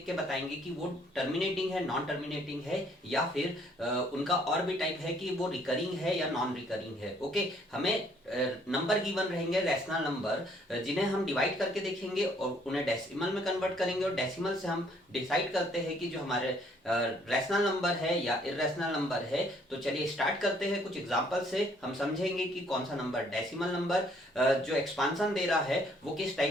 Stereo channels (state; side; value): normal; both; correlation 0.64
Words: के बताएंगे कि वो टर्मिनेटिंग है, नॉन टर्मिनेटिंग है, या फिर उनका और भी टाइप है कि वो रिकरिंग है या नॉन रिकरिंग है। ओके, हमें नंबर गिवन रहेंगे, रैशनल नंबर, जिन्हें हम डिवाइड करके देखेंगे और उन्हें डेसिमल में कन्वर्ट करेंगे और डेसिमल से हम डिसाइड करते हैं कि जो हमारे रैशनल नंबर है या इरेशनल नंबर है। तो चलिए स्टार्ट करते हैं। कुछ एग्जांपल से हम समझेंगे कि कौन सा नंबर डेसिमल नंबर जो एक्सपांसन दे रहा है वो किस